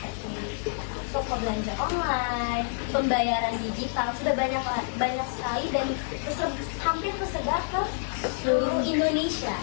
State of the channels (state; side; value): silent; right; digital silence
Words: toko belanja online, pembayaran digital, sudah banyak sekali dan hampir tersebar ke seluruh Indonesia.